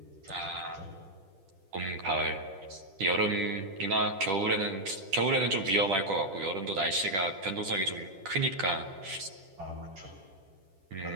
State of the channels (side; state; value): left; late; 10 ms